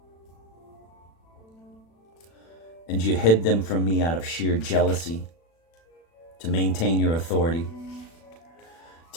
And you hid them from me out of sheer jealousy to maintain your authority.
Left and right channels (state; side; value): late; right; 36 ms